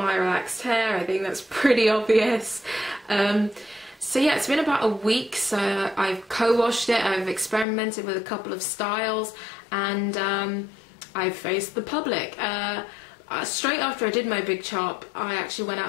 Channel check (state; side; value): drops out; right; at 7.7 s